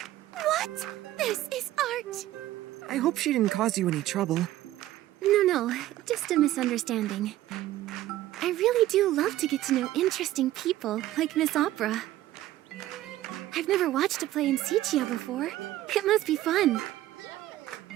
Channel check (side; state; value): left; quieter; 14.5 dB